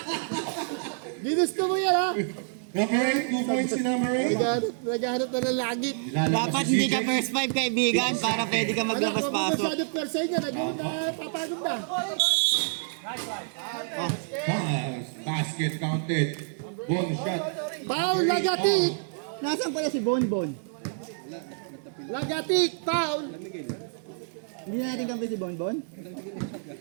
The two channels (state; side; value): silent; left; digital silence